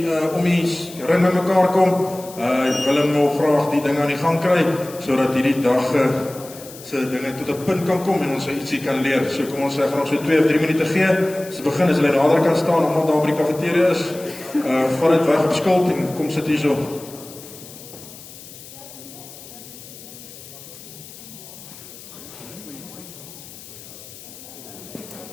om die ring by mekaar kom. Willem wil graag die ding aan die gang kry, sodat hierdie dag se dinge tot 'n punt kan kom en ons ietsie kan leer. So kom ons gaan ons so 2 of 3 minute gee. As ons begin, as hulle nader kan staan, omdat daar by die kafeteria is, vat dit weg op skuld en kom sit hierso.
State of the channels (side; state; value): left; noise; hiss, 17 dB below the sound